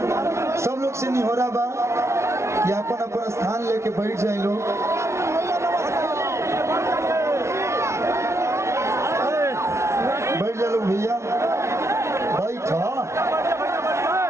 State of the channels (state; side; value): late; left; 0.13 ms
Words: सब लोग से निहोरा बा कि अपन अपन स्थान लेके बैठ जाए लोग। बैठ जा लोग भैया,